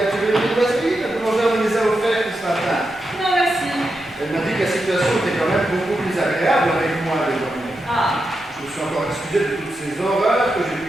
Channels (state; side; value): normal; both; correlation 0.87